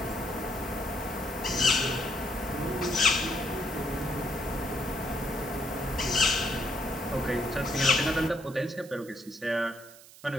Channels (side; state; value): right; noise; hiss, 20 dB below the sound